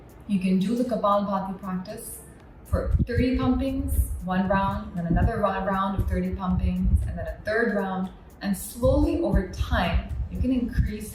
You can do the Kapalabhati practice for 30 pumpings, one round, then another round of 30 pumpings, and then a third round. And slowly over time, you can increase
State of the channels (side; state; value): both; identical; correlation 1.00